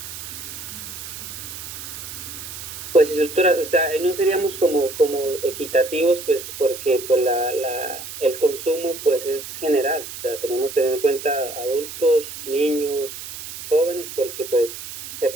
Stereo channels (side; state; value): right; noise; hiss, 10 dB below the sound